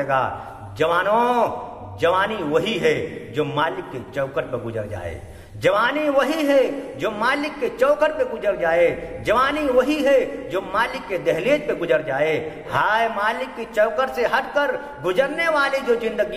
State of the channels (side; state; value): both; identical; correlation 1.00